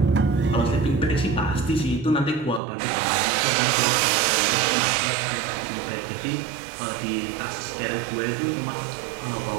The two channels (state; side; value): drops out; left; at 2.6 s